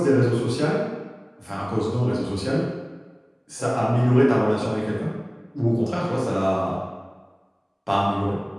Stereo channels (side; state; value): both; identical; correlation 1.00